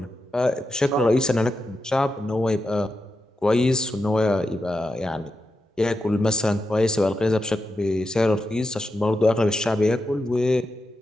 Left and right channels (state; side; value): normal; both; correlation 0.87